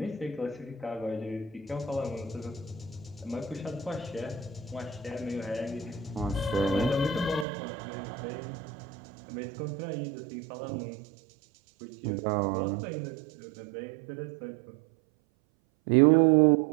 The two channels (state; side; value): drops out; left; at 7.5 s